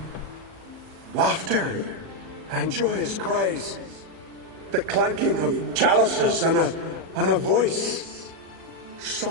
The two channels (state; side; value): late; left; 37 ms